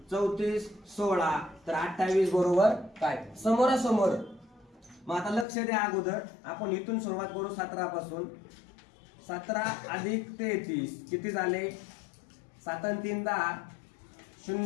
34 16 तर 28 बरोबर काय समोरासमोर। मग आता लक्ष द्या, अगोदर आपण इथून सुरुवात करू 17 पासून। 17 अधिक 33 किती झाले 7 आणि 3 10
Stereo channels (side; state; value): right; drops out; at 5.5 s